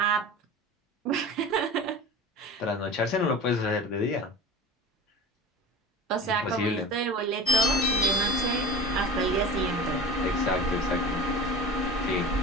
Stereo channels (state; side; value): normal; both; correlation 0.36